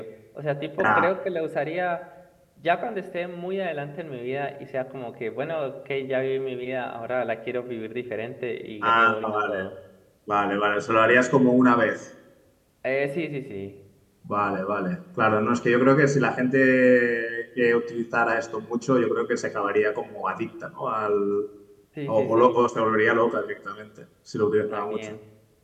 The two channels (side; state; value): both; identical; correlation 1.00